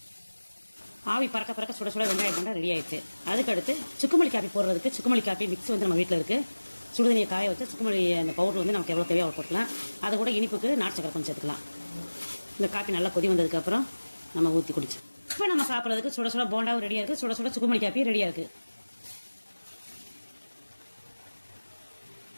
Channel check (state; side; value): inverted; both; correlation -1.00